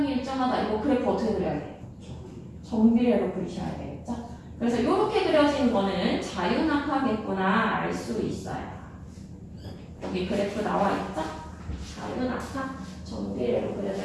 일정하다. 이거 그래프 어떻게 그려야 돼? 정비례로 그리셔야 되겠죠? 그래서 이렇게 그려진 거는 자유낙하겠구나 알 수 있어요. 여기 그래프 나와 있죠? 자유낙하 정비례로 그려져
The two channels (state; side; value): identical; both; correlation 1.00